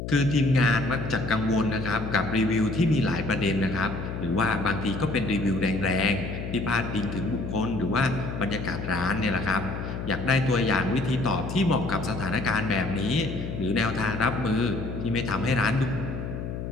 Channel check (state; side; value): noise; left; hum, 6 dB below the sound